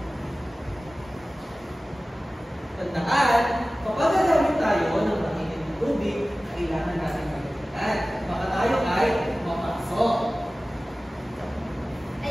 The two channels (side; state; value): both; normal; correlation 0.97